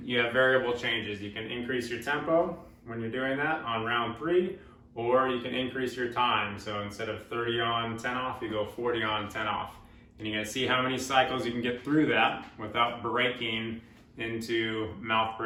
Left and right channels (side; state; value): both; identical; correlation 1.00